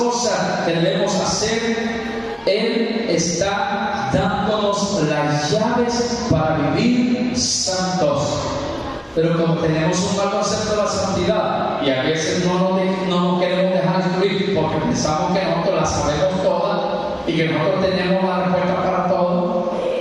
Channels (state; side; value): identical; both; correlation 1.00